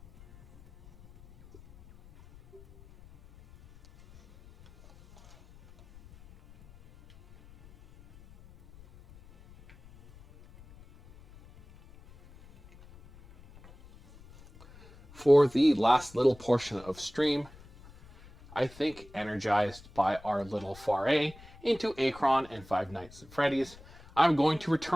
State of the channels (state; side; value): noise; left; rumble, 23 dB below the sound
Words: For the last little portion of stream, I think energized by our little foray into Akron and Five Nights at Freddy's, I'm going to